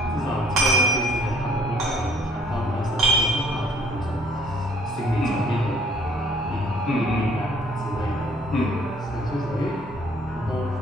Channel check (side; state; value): both; normal; correlation 0.59